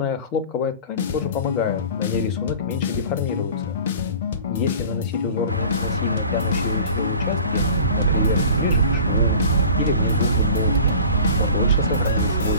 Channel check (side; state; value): both; inverted; correlation -0.42